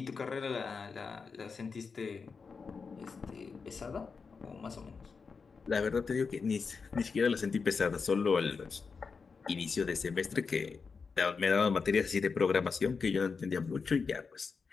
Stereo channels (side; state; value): right; quieter; 5.1 dB